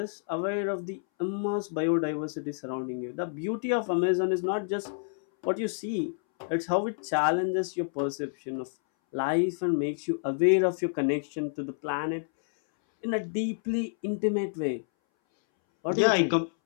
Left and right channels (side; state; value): right; silent; 59 dB below the other